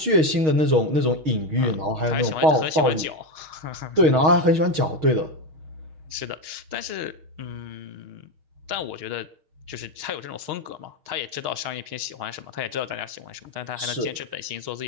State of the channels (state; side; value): late; left; 6.4 ms